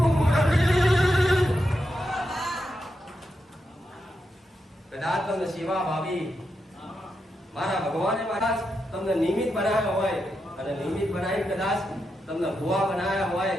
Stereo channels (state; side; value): normal; both; correlation 0.86